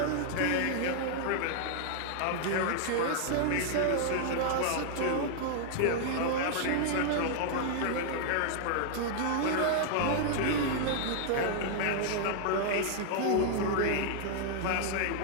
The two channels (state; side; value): different; both; correlation 0.00